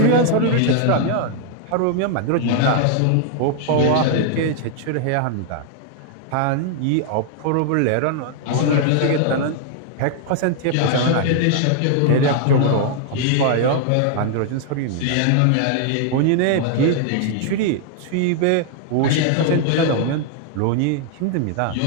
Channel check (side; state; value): both; different; correlation 0.00